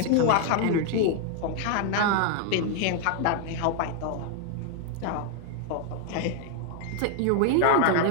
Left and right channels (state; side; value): different; both; correlation 0.00